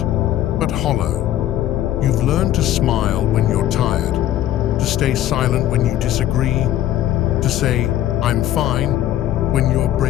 but hollow. You've learned to smile when you're tired, to stay silent when you disagree, to say, "I'm fine," when you're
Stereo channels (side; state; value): right; quieter; 12.7 dB